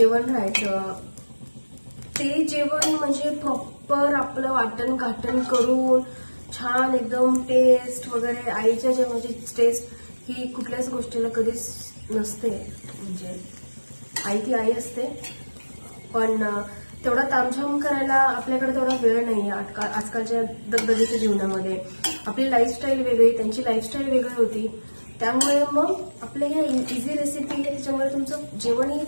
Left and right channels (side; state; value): both; inverted; correlation -1.00